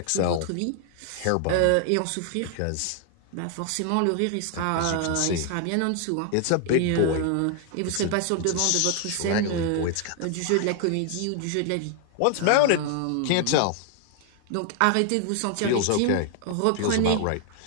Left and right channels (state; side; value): different; both; correlation 0.00